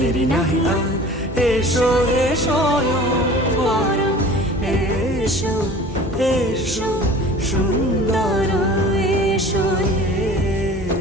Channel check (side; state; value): both; normal; correlation 0.43